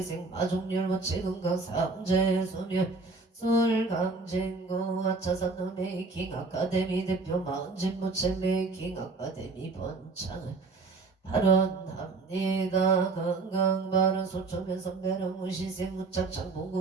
마종률 무채 건강 삼재 소멸 서울강진구 아차산노 메이킹 아카데미 대표 마흔진 무채 메이킹 아카데미 번창을 발언합니다. 건강발언 소초면 선배는 무시생 무착창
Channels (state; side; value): quieter; left; 3.8 dB